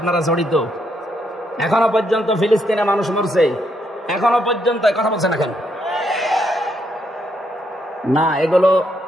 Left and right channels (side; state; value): both; normal; correlation 0.76